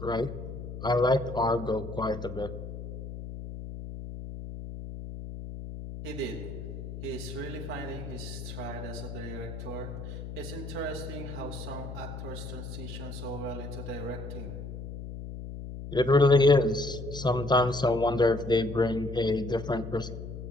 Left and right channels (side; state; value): left; noise; hum, 9 dB below the sound